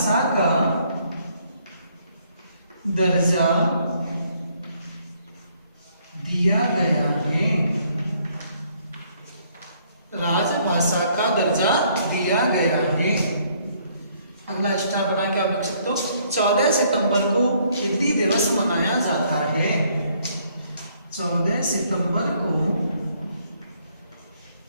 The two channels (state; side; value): inverted; both; correlation -0.66